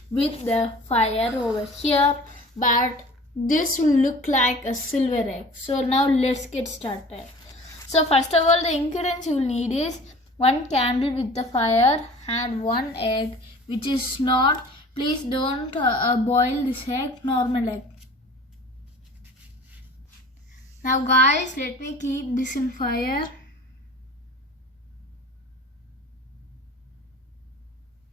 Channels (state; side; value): normal; both; correlation 0.44